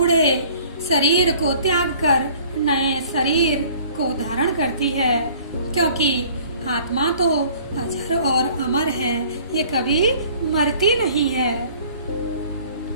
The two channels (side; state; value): both; inverted; correlation -0.52